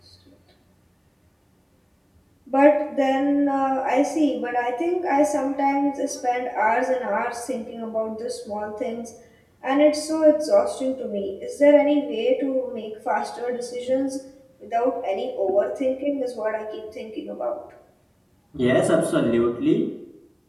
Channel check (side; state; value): both; identical; correlation 1.00